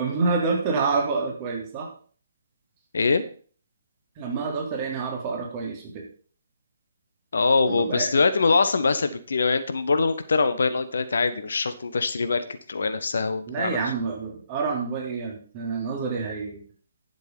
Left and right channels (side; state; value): both; inverted; correlation -0.77